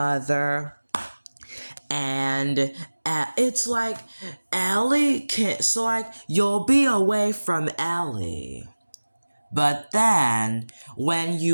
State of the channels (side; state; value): both; inverted; correlation -1.00